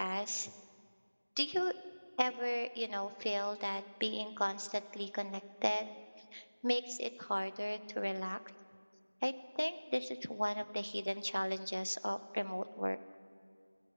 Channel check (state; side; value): inverted; both; correlation -1.00